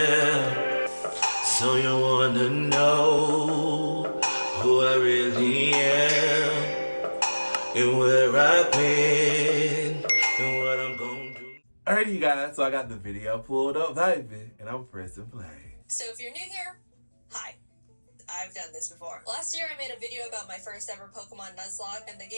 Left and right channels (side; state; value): both; inverted; correlation -1.00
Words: So you wanna know who I really am, and where I've been, and what I'm gonna do. Alrighty, you guys, so I got the video pulled up, baby, and I'm pressing play. So if you're new here, hi. I've done this before. Last year I made a video about my first ever Pokemon Nuzlocke, and the